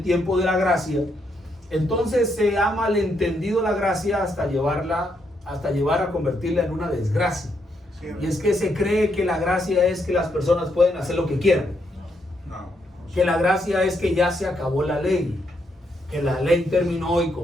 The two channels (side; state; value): both; normal; correlation 0.77